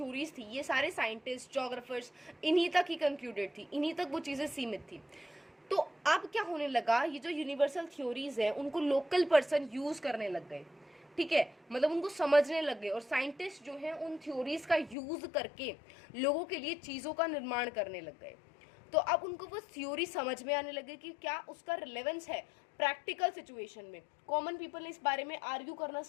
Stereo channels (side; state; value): right; drops out; at 15.0 s